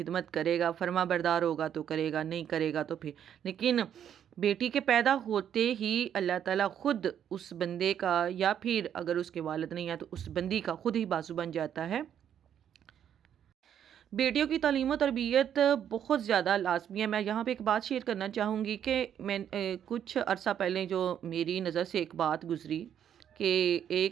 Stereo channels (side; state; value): left; quieter; 9.4 dB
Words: करेगा, फर्मा बरदार होगा तो करेगा, नहीं करेगा तो फिर। लेकिन बेटी के पैदा होते ही अल्लाह ताला खुद उस बंदे का, या फिर अगर उसके वालिद नहीं है तो उस बंदी का खुद ही बाजू बन जाता है। बेटियों की तालीम और तरबियत बहुत ज़्यादा लाजमी है। मैं यहाँ पे एक बात शेयर करना चाहूँगी कि मैं कुछ अरसा पहले जो मेरी नज़र से एक बात गुज़री कि